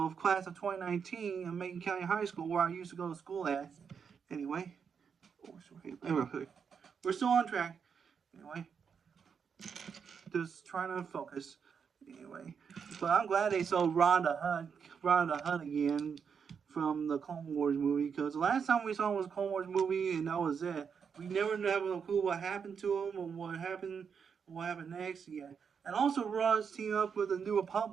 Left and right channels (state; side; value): quieter; left; 6.6 dB